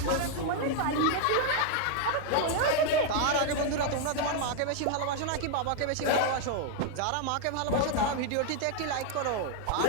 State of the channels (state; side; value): different; both; correlation 0.00